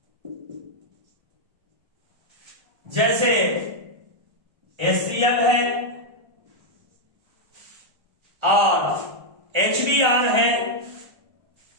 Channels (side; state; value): left; late; 1.3 ms